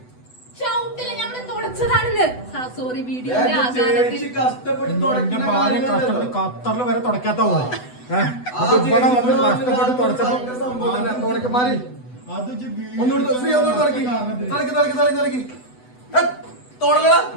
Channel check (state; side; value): late; right; 8.0 ms